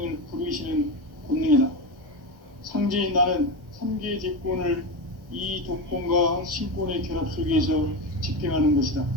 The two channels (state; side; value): late; left; 1.1 ms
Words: 부르시는 권능이다. 상제인 나는 3개의 대권을 이 도권과 신권의 결합 속에서 집행하는 것이다.